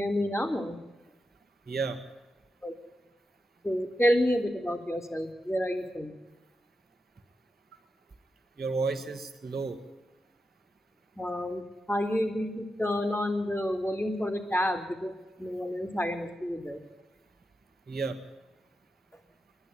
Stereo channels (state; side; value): normal; both; correlation 0.88